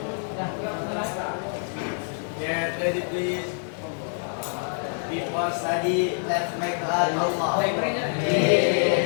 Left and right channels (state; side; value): silent; right; 61 dB below the other